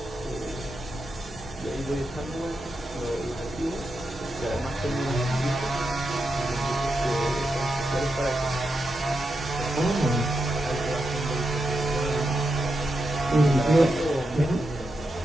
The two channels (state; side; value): normal; both; correlation 0.86